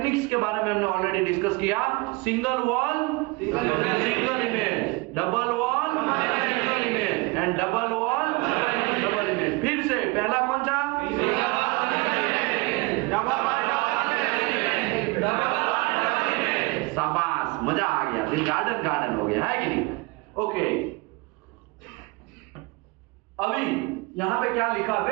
के बारे में हमने ऑलरेडी डिस्कस किया। Single wall single image, double wall single image and double wall double image. फिर से पहला कौन सा? शाबाश, मजा आ गया। फिर गार्डन हो गया, है कि नहीं? ओके, अभी यहां पे क्या लिखा?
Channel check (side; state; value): left; quieter; 25.2 dB